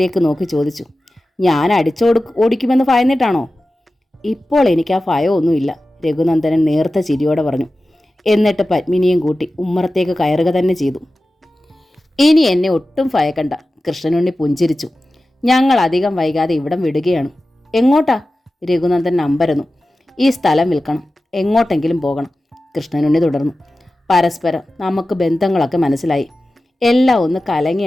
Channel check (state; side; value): normal; both; correlation 0.95